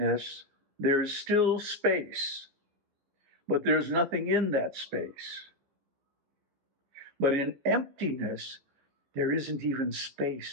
there's still space, but there's nothing in that space. But in emptiness, there isn't even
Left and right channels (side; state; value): left; late; 15 ms